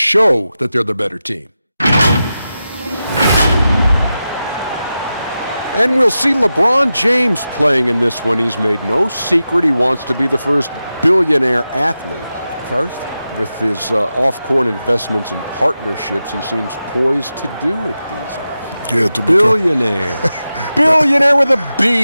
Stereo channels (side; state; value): both; inverted; correlation -0.92